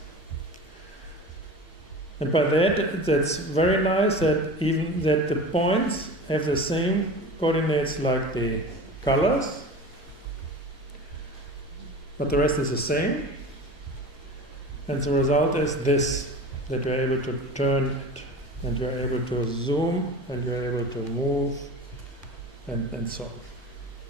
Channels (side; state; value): both; normal; correlation 0.35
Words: And by that, that's very nice that even that the points have the same coordinates like the colors, but the rest is the same. And the result is this, that you're able to turn it, and you're able to zoom, and you're able to move, and so